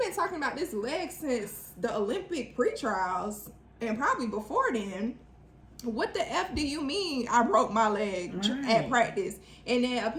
been talking about this leg since the Olympic pre-trials and probably before then, what the F do you mean I broke my leg at practice? And then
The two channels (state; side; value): identical; both; correlation 1.00